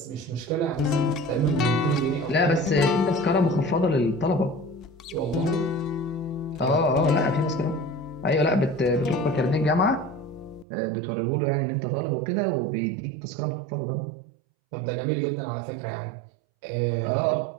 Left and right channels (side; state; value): left; drops out; at 10.7 s